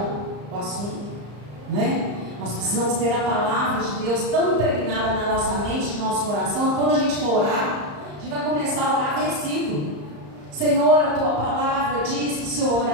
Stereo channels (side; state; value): left; late; 34 ms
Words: o assunto, né? Nós precisamos ter a palavra de Deus tão impregnada na nossa mente, no nosso coração, que quando a gente for orar, a gente vai começar a orar versículo. Senhor, a tua palavra diz que se eu